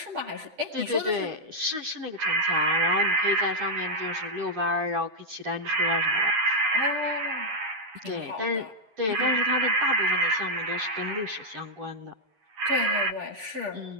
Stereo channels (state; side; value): late; left; 9.3 ms